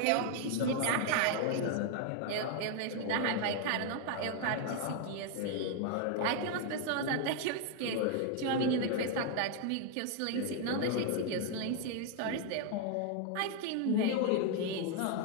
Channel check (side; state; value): both; different; correlation 0.00